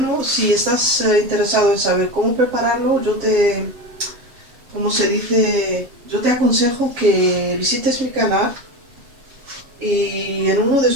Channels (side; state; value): left; late; 7.3 ms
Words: Si estás interesado en saber cómo prepararlo, como se dice, yo te aconsejo que visites mi canal y en uno de